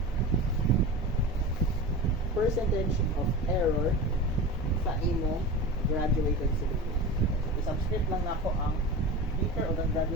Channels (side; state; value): both; normal; correlation 0.30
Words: of error sa imo graduated cylinder. I-subscript lang nako ang beaker o